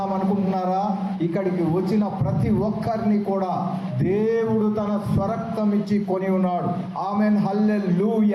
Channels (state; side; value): identical; both; correlation 1.00